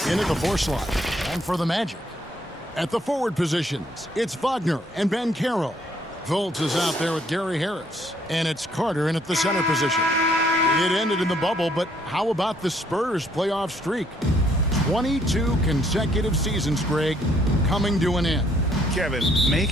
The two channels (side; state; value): both; normal; correlation 0.67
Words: in at the 4 slot. And for the Magic, at the forward positions, it's Wagner and Banchero. Fultz is out there with Gary Harris. And it's Carter in at the center position. It ended in the bubble, but how about the Spurs playoff streak? 22 consecutive seasons, Greg, coming to an end. Kevin,